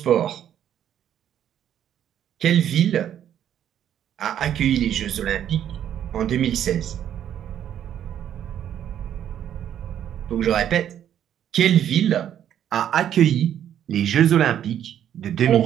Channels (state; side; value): quieter; left; 10.2 dB